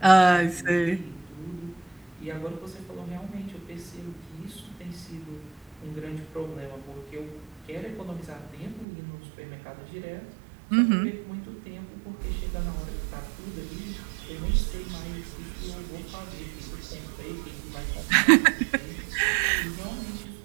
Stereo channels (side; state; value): left; drops out; at 8.8 s